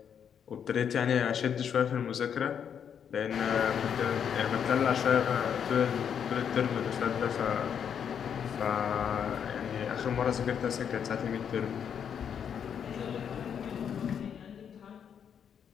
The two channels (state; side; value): quieter; right; 8.0 dB